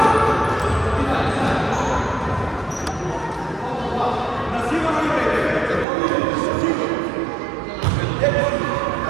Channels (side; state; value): left; drops out; at 5.9 s